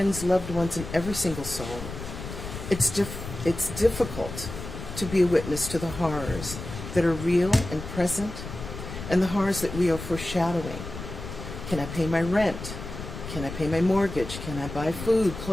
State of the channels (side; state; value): left; noise; rumble, 9 dB below the sound